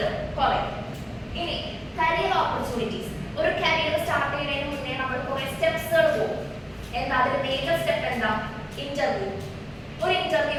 കുറയും. ഇനി കരിയർ ഓപ്പർച്യൂണിറ്റീസ്. ഒരു കരിയർ സ്റ്റാർട്ട് ചെയ്യുന്നതിന് മുന്നേ നമ്മൾ കുറേ സ്റ്റെപ്സുകൾ പോകും. എന്താ അതിൽ മേജർ സ്റ്റെപ്പ് എന്താ, ഇന്റർവ്യൂ. ഒരു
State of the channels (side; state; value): both; identical; correlation 1.00